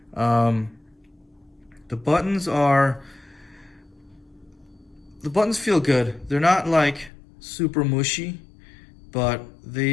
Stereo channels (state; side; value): drops out; right; at 7.1 s